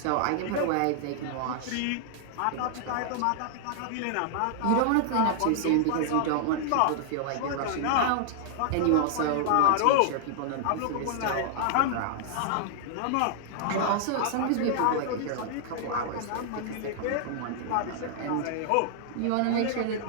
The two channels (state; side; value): different; both; correlation -0.01